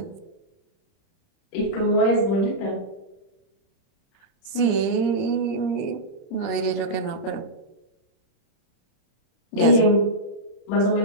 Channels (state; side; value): late; right; 30 ms